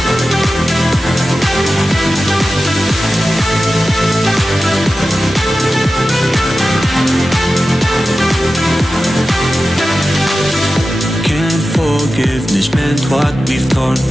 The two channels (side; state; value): both; normal; correlation 0.93